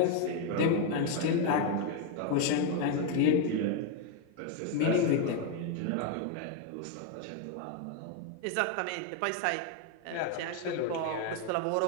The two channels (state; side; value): different; both; correlation 0.01